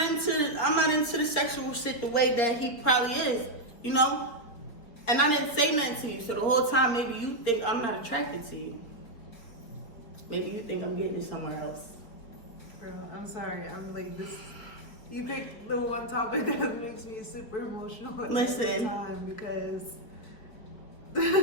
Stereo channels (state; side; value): late; right; 4.5 ms